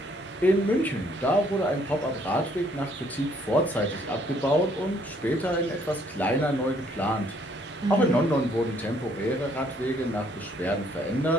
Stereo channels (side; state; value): both; normal; correlation 0.65